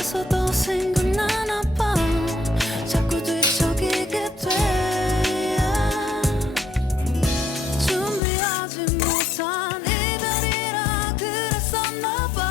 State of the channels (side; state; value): right; drops out; at 8.2 s